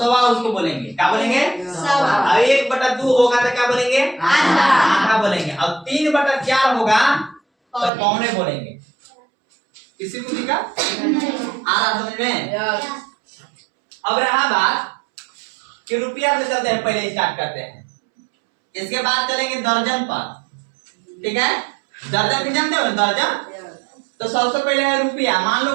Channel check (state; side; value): drops out; left; at 7.9 s